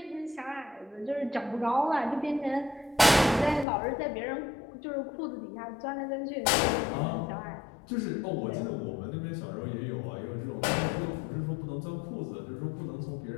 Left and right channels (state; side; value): drops out; right; at 3.7 s